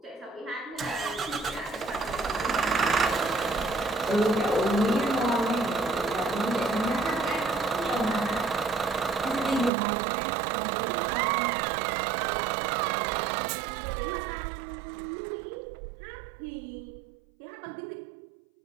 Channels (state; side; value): drops out; left; at 9.7 s